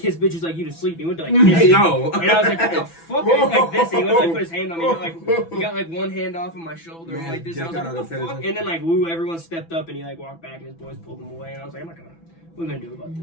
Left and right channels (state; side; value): late; right; 6.0 ms